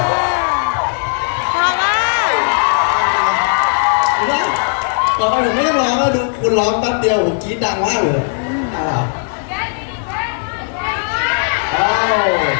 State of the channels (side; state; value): right; silent; 60 dB below the other